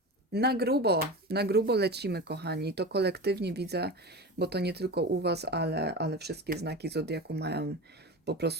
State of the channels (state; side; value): normal; both; correlation 0.28